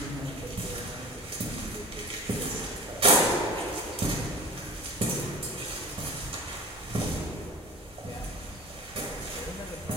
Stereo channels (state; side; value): normal; both; correlation 0.38